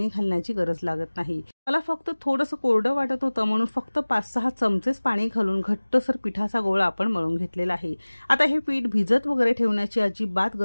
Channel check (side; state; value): both; inverted; correlation -1.00